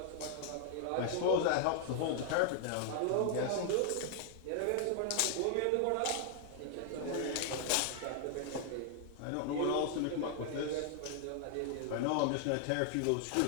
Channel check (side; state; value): both; different; correlation 0.00